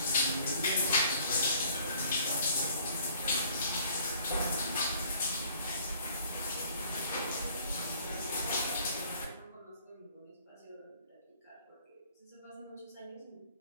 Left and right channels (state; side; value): inverted; both; correlation -0.57